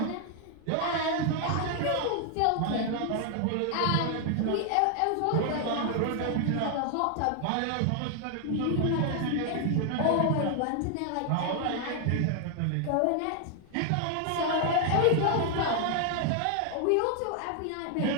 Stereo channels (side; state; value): both; different; correlation 0.00